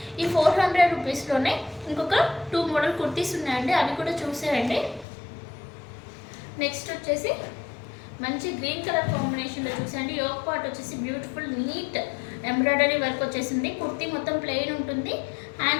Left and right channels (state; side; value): drops out; right; at 5.1 s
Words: ఈ 400 రూపీస్లోనే ఇంకొక 2 మోడల్ కుర్తీస్ ఉన్నాయండి, అవి కూడా చూసేయండి. నెక్స్ట్ వచ్చేసి మంచి గ్రీన్ కలర్ కాంబినేషన్లో చూసేయండి. యోగ్ పార్ట్ వచ్చేసి బ్యూటిఫుల్ నీట్ ఎంబ్రాయిడరీ వర్క్ వచ్చేసింది. కుర్తీ మొత్తం ప్లెయిన్ ఉంటుంది.